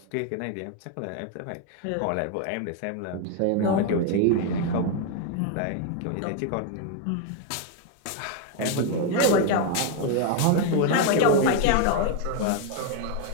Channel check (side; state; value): both; different; correlation 0.01